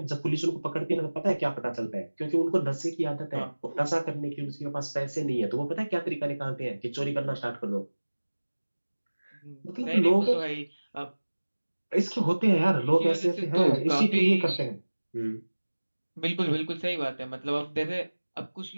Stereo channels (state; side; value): inverted; both; correlation -1.00